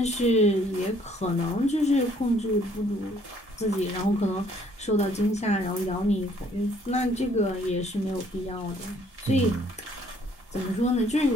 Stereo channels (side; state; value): both; normal; correlation 0.63